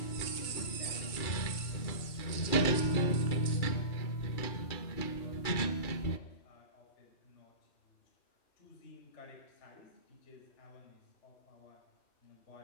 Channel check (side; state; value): right; late; 2.3 ms